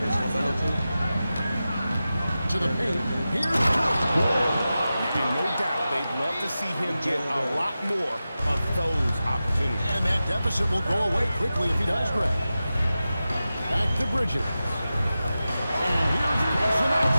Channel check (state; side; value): inverted; both; correlation -0.94